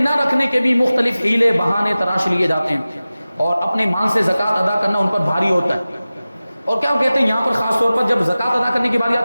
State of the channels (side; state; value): both; inverted; correlation -0.96